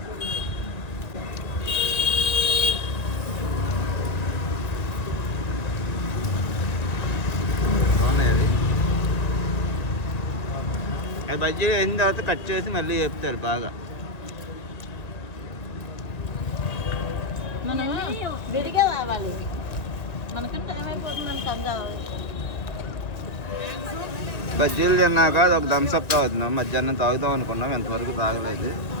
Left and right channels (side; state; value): right; late; 1.9 ms